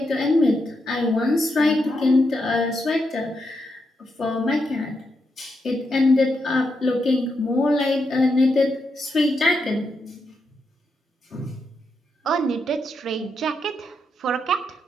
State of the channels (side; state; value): both; normal; correlation 0.83